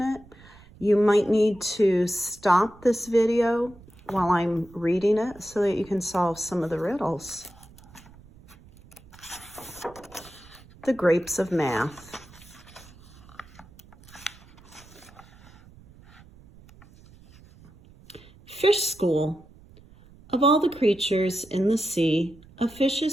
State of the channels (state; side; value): noise; right; rumble, 23 dB below the sound